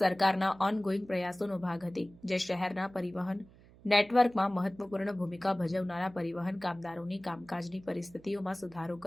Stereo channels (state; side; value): noise; right; hum, 24 dB below the sound